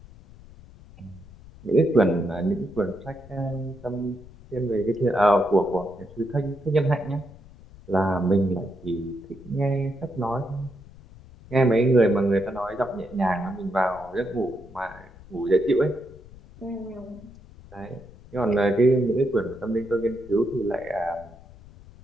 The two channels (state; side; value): noise; left; rumble, 20 dB below the sound